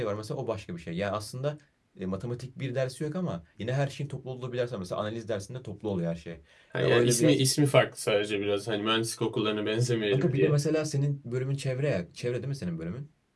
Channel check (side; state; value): both; identical; correlation 1.00